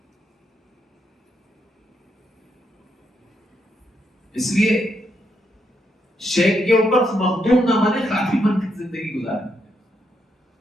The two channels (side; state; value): both; normal; correlation 0.79